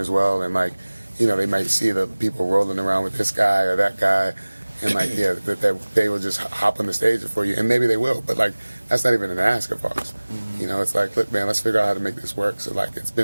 well, and like, you know, they might see the people rolling around with this guy or that guy, and like, yeah, that they will just hop on the stage for you, and maybe they will, but like that's not even an ask of ours. You know, it's like, look, man, let's figure out how to make this work so like it's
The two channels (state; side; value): inverted; both; correlation -1.00